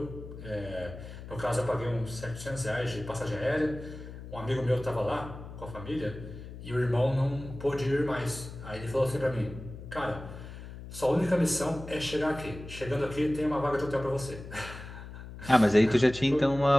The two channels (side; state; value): left; noise; hum, 12 dB below the sound